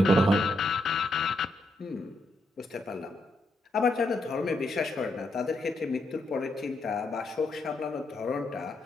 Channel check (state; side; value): normal; both; correlation 0.80